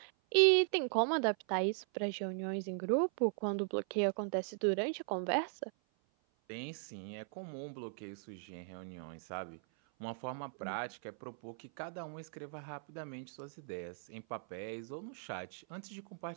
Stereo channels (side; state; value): left; silent; 52 dB below the other